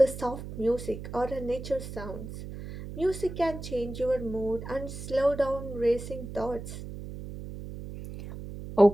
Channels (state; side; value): noise; right; hum, 10 dB below the sound